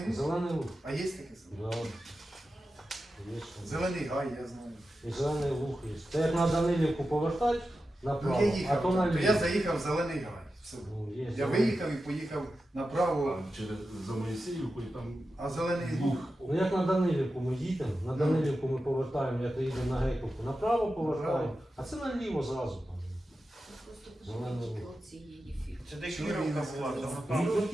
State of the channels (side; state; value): both; normal; correlation 0.92